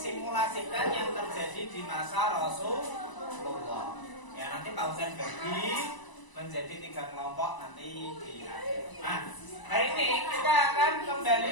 yang terjadi di masa Rasulullah. Ya, nanti Pak Husain bagi menjadi 3 kelompok nanti di akhir. Nah, hari ini kita akan kembali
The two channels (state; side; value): late; right; 1.0 ms